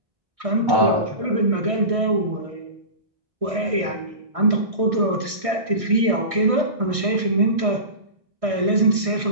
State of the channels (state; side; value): late; left; 1.6 ms